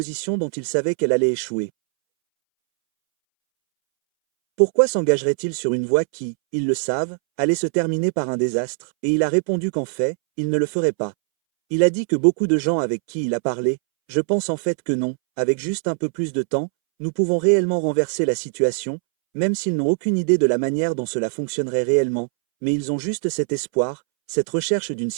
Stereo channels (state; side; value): silent; left; 65 dB below the other